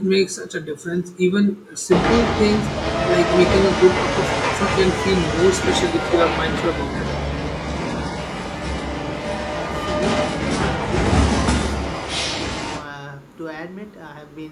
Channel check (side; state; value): both; identical; correlation 1.00